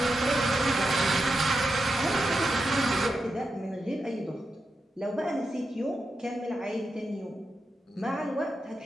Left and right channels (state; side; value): normal; both; correlation 0.88